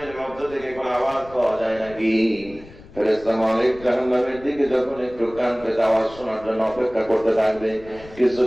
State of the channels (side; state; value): left; noise; rumble, 20 dB below the sound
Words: মধ্য থেকে কোনো আওয়াজ পাওয়া যায় নাকি। ফেরেশতা মালিক জাহান্নামের দিকে যখন একটু কান পেতে আওয়াজ শোনার জন্য অপেক্ষা করতে থাকবে,